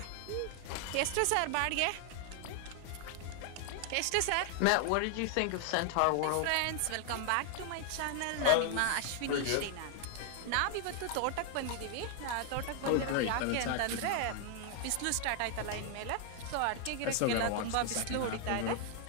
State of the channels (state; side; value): different; both; correlation 0.00